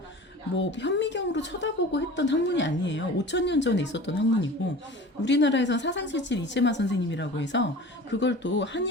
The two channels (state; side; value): normal; both; correlation 0.39